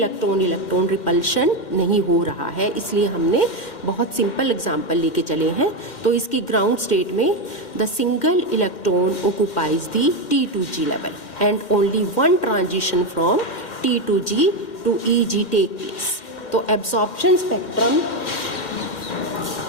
रिपल्शन नहीं हो रहा है, इसलिए हमने बहुत सिंपल एग्जांपल लेके चले हैं। तो इसकी ग्राउंड स्टेट में the single electron occupies the T2G level and only one transition from T2G to EG take place. तो absorption spectrum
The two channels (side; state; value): right; late; 2.1 ms